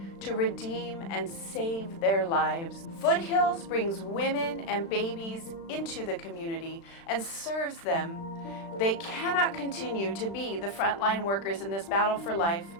to redeem and save their lives. Foothills brings women and babies into the community and serves them. They cannot continue to be the frontline workers in this battle for life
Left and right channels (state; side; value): late; right; 36 ms